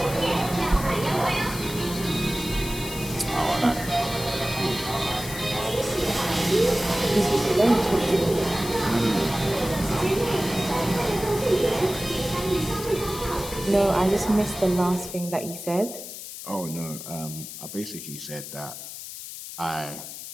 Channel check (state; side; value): noise; left; hiss, 10 dB below the sound